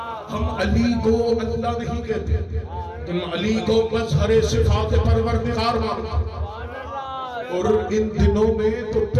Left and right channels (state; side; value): identical; both; correlation 1.00